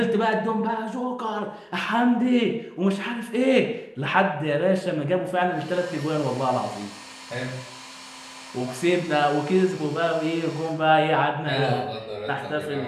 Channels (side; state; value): both; identical; correlation 1.00